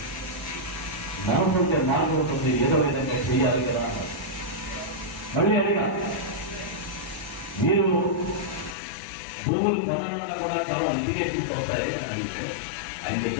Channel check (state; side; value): drops out; right; at 8.8 s